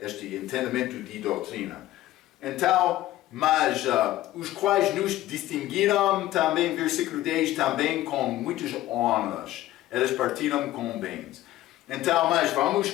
entendimento de doutrina. Então, mas os quais nos distinguiram também, versículo 10, também com muitas honras. Eles partiram com bens. Então, mas vamos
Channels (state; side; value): quieter; right; 15.1 dB